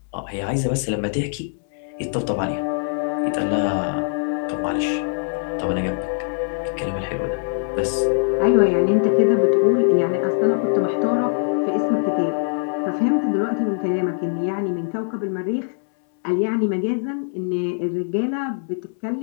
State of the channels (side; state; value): right; silent; 64 dB below the other